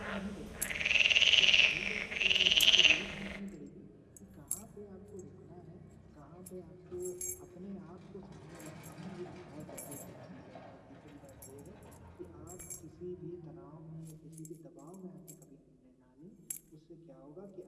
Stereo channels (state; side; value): identical; both; correlation 1.00